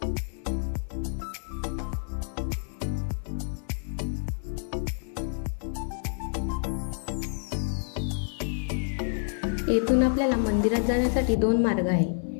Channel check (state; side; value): silent; right; digital silence